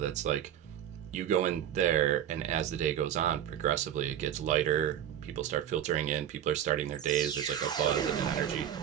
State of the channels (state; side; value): quieter; left; 10.3 dB